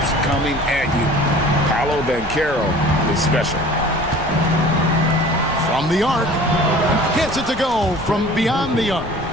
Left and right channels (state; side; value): noise; left; rumble, 14 dB below the sound